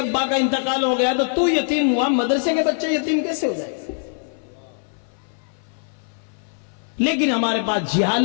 کا انتقال ہو گیا تو یتیم ہوا، مدرسے کے بچے یتیم کیسے ہو جائے؟ لیکن ہمارے پاس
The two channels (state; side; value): silent; right; 57 dB below the other